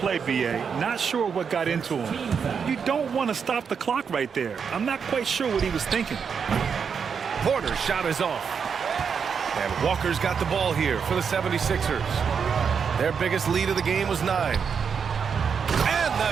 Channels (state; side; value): quieter; left; 6.5 dB